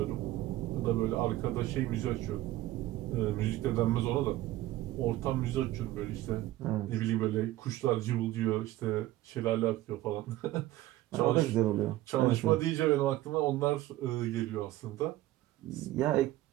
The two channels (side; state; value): left; quieter; 15.8 dB